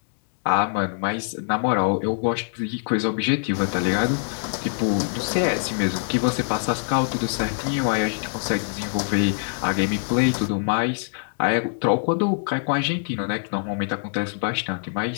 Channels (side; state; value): right; silent; digital silence